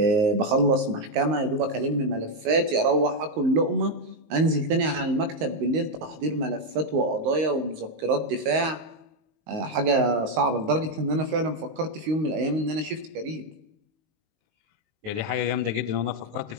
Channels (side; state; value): left; late; 19 ms